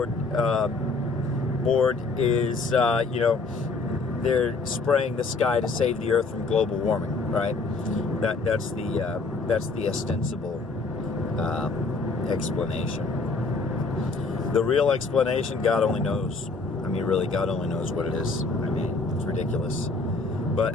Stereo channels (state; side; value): quieter; right; 3.8 dB